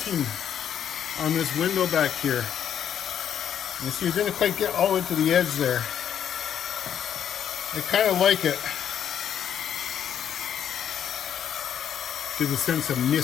on this window back here. You see, it didn't quite get all the way to the edge there. I kind of like it. Gives a sense of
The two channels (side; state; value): right; quieter; 9.1 dB